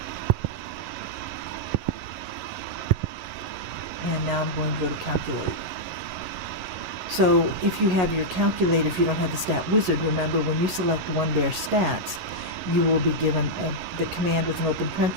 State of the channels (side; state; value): left; late; 11 ms